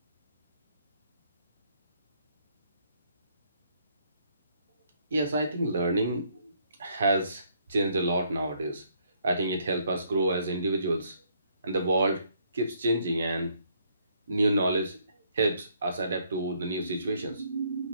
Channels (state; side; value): inverted; both; correlation -0.68